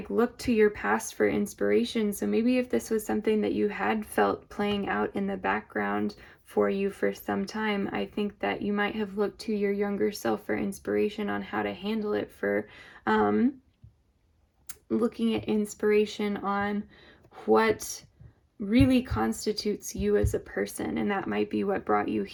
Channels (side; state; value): both; identical; correlation 1.00